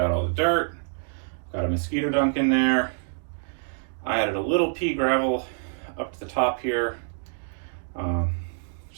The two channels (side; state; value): left; silent; digital silence